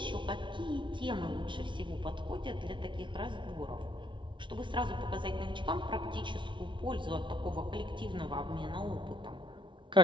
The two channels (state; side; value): late; left; 0.24 ms